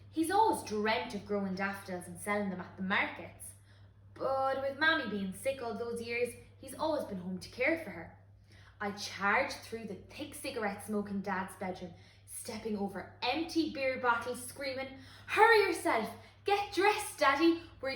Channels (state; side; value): identical; both; correlation 1.00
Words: he's always dreamt of growing daffodils and selling them at the markets. But with Mammy being sick all those years, he's always been home to care for her. I charge through the thick cigarette smoke in Dad's bedroom, stepping over empty beer bottles, screaming, "Hurry yourself! Get dressed, Daddy! We're